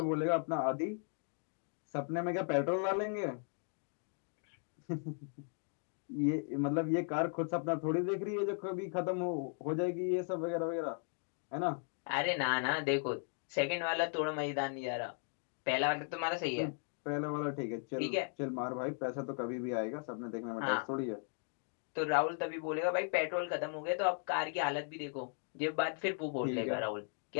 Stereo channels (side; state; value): right; silent; 53 dB below the other